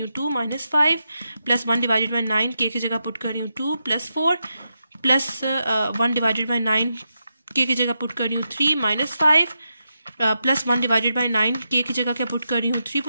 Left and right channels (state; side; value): inverted; both; correlation -0.86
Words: हूँ 2 -5 प्लस 1/9 के की जगह पुट कर रही हूँ 2 +4 प्लस 1/9 के की जगह पुट कर रही हूँ 3 -5 प्लस 1/9 के की जगह क्या पुट कर रही हूँ 3